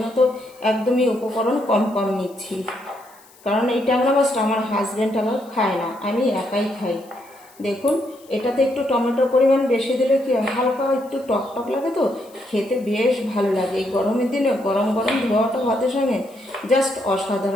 তো একদমই উপকরণ কম কম নিচ্ছি। কারণ এই ট্যাংরা মাছটা আমার হাজব্যান্ড আবার খায় না, আমি একাই খাই। দেখুন এটাতে একটু টমেটোর পরিমাণ বেশি দিলে কি হালকা একটু টক টক লাগে, তো খেতে বেশ ভালো লাগে। এই গরমের দিনে গরম গরম ধোয়াটা ভাতের সঙ্গে জাস্ট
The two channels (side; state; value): left; noise; hiss, 27 dB below the sound